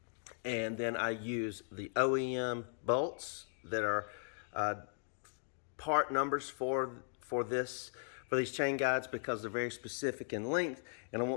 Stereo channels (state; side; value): silent; right; digital silence